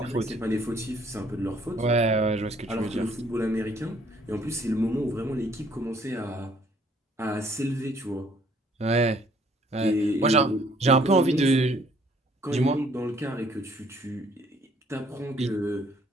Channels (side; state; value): both; normal; correlation 0.62